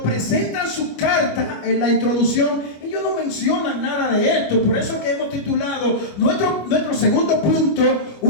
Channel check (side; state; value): right; late; 25 ms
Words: presentan su carta en la introducción, ellos no mencionan nada de esto. Por eso que hemos titulado nuestro segundo punto,